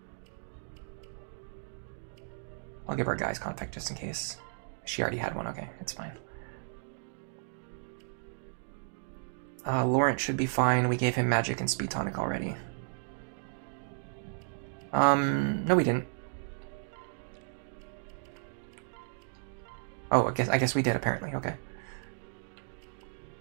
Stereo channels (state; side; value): silent; left; digital silence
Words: I'll give her a guy's contact just in case. She already had one. Okay, it's fine. Laurent should be fine. We gave him magic and speed tonic already. No, we didn't. Oh, I guess we did apparently. Okay.